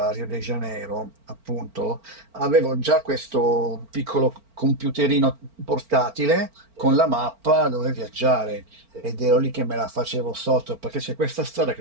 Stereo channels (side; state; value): left; late; 4.4 ms